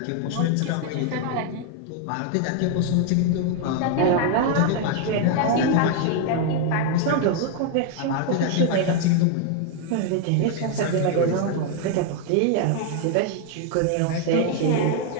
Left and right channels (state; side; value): different; both; correlation 0.00